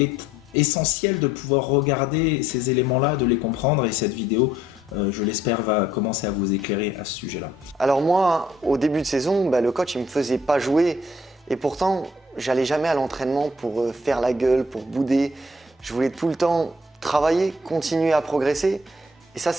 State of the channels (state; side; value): normal; both; correlation 0.63